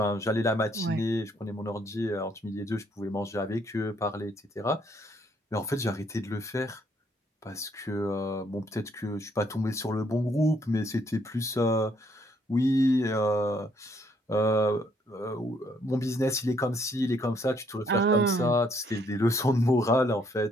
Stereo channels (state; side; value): normal; both; correlation 0.69